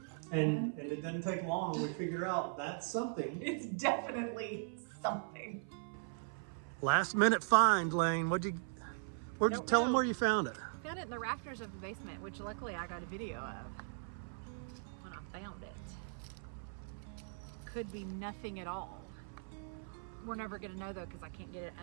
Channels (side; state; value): left; silent; 52 dB below the other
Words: And it doesn't take long. We figure out that's something. It's definitely something. Last minute find, Lane. Where'd you tell them where you found it? Found it in the rafters of the basement, which luckily I got a video of when I found it. Could be nothing at all. We're never gonna know though, because I can't get it